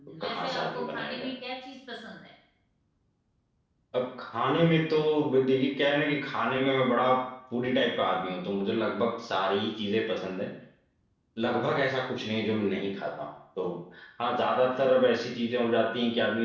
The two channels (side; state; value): both; identical; correlation 1.00